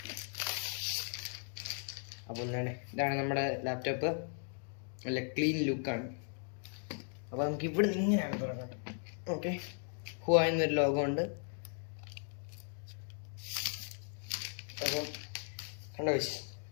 അപ്പോൾ ഇതാണ് നമ്മുടെ ലാപ്ടോപ്പ്. നല്ല ക്ലീൻ ലുക്കാണ്. അപ്പോൾ നമുക്ക് ഇവിടെ ഇങ്ങനെയാണ് തുറക്കേണ്ടത്. ഓക്കെ, ഹുവായി എന്നൊരു ലോഗോ ഉണ്ട്. അപ്പം കണ്ടോ,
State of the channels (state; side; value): silent; right; 53 dB below the other